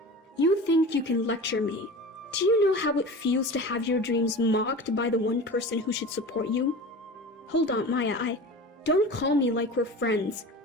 "You think you can lecture me? Do you know how it feels to have your dreams mocked by the one person who should support you?" "Hold on, Maya, don't call me like we're friends.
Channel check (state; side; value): normal; both; correlation 0.34